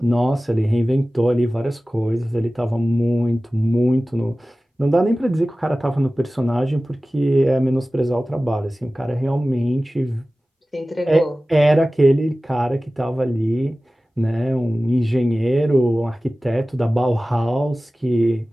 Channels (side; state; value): both; normal; correlation 0.97